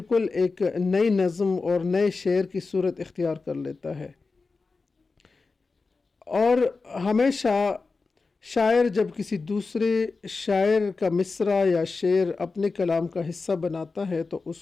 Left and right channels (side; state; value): right; quieter; 4.1 dB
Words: ایک نئی نظم اور نئے شعر کی صورت اختیار کر لیتا ہے۔ اور ہمیشہ شاعر جب کسی دوسرے شاعر کا مصرع یا شعر اپنے کلام کا حصہ بناتا ہے تو